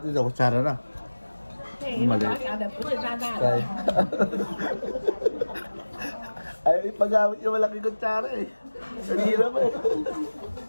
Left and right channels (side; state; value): both; inverted; correlation -1.00